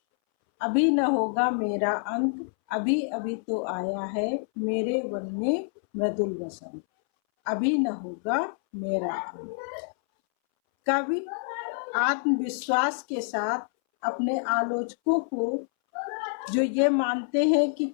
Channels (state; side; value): silent; right; 60 dB below the other